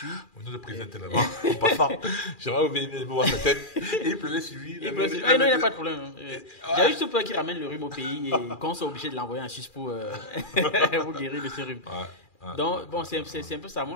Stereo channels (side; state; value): right; late; 2.4 ms